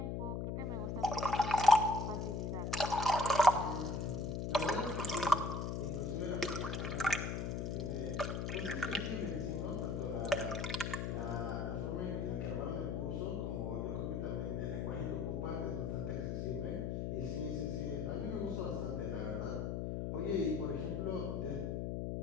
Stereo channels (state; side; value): noise; left; hum, 1 dB below the sound